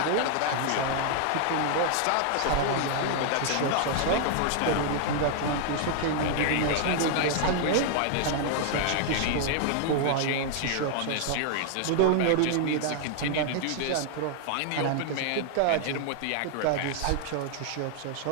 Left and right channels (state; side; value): different; both; correlation 0.00